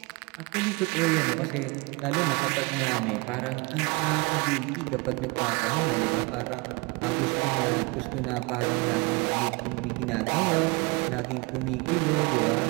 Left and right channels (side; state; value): left; quieter; 26.7 dB